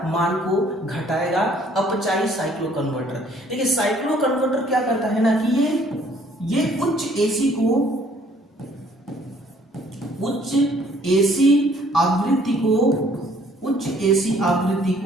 मान को घटाएगा। अपचायी साइक्लो कन्वर्टर। देखिए साइक्लो कन्वर्टर क्या करता है ना कि ये उच्च एसी आवृत्ति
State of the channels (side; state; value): both; normal; correlation 0.60